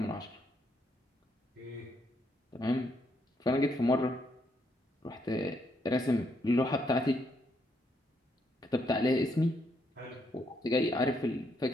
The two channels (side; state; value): both; normal; correlation 0.75